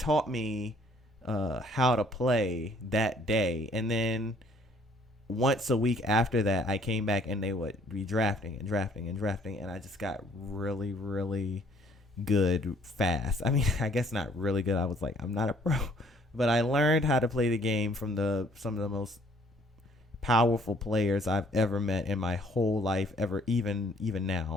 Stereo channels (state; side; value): normal; both; correlation 0.62